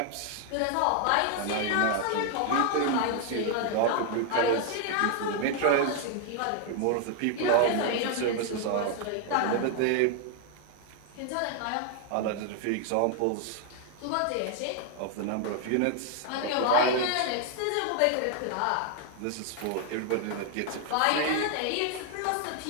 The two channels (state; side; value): different; both; correlation 0.00